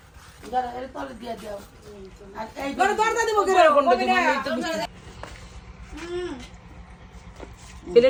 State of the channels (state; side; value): identical; both; correlation 1.00